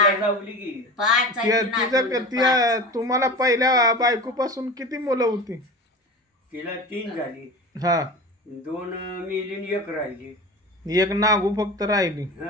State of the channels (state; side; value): normal; both; correlation 0.32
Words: लावली की 5 आहे ती नातुंड, तुम्हाला पहिल्या बायकोपासून किती मुलं होती? तिला 3 झाली, हा, 2 मेली आणि 1 राहिली. एक नागू फक्त राहिली.